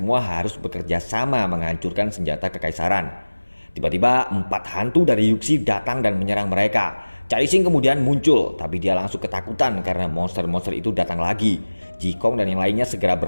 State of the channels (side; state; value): both; inverted; correlation -1.00